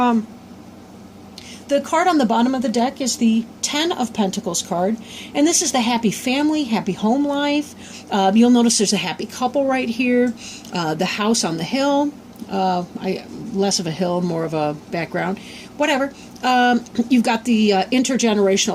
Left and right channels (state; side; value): identical; both; correlation 1.00